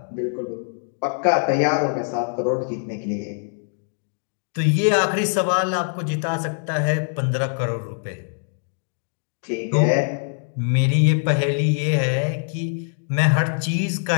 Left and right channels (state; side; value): silent; right; digital silence